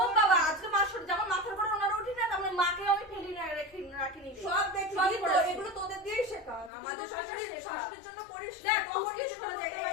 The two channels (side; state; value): right; drops out; at 6.7 s